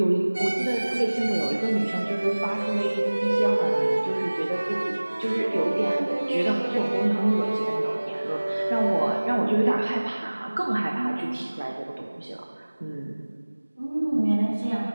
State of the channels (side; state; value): both; inverted; correlation -1.00